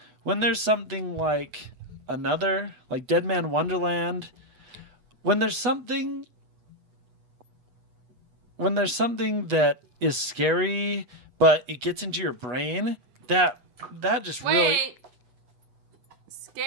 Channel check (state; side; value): late; left; 8.2 ms